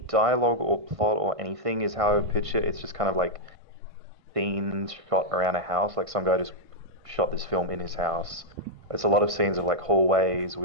or plot or anything is how I would pitch it. It's just kind of like scenes shot around a house. Like some guy just shot this film in his house. It's a lot of scenes of like hallways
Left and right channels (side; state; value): left; late; 1.5 ms